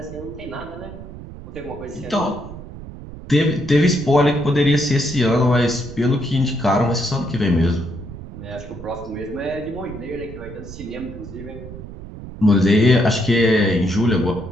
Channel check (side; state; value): right; noise; rumble, 13 dB below the sound